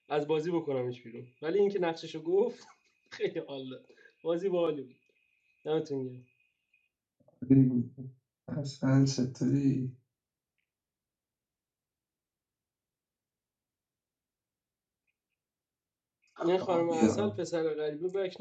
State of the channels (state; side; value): identical; both; correlation 1.00